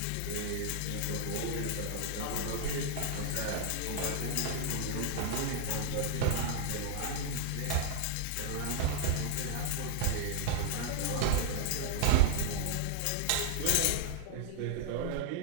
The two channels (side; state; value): both; different; correlation -0.01